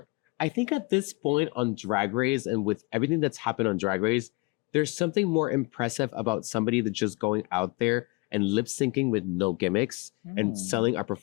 I think at this point on Drag Race and with everything that's happened on Drag Race, there's something more impressive about somebody that's just going out there and lip syncing with no gimmicks and selling a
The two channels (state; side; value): quieter; right; 26.1 dB